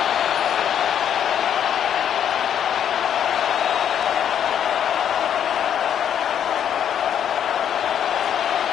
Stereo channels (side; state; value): right; quieter; 9.2 dB